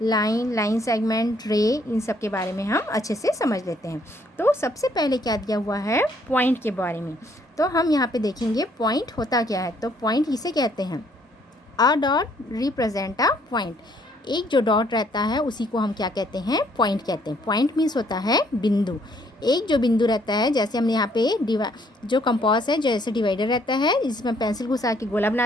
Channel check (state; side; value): normal; both; correlation 0.66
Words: लाइन, लाइन सेगमेंट, रे, इन सब के बारे में हम अच्छे से समझ लेते हैं। तो सबसे पहले क्या दिया हुआ है, पॉइंट के बारे में। तो हम यहाँ पे देखेंगे पॉइंट होता क्या है। तो पॉइंट इसे कहते हैं, a dot represent a point. एक जो डॉट रहता है उसी को हम क्या कहते हैं, पॉइंट कहते हैं। पॉइंट मीन्स होता है बिंदु। एक जो बिंदु रहता है, जैसे हमने यहाँ पे जो कंपास है, जैसे डिवाइडर रहता है, जिसमें पेंसिल घुसा के गोला